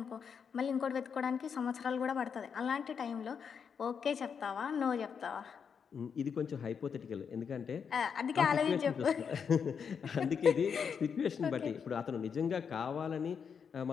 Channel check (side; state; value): right; quieter; 6.7 dB